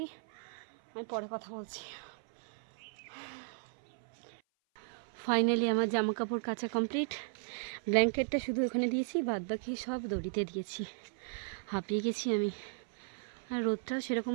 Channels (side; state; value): left; silent; 54 dB below the other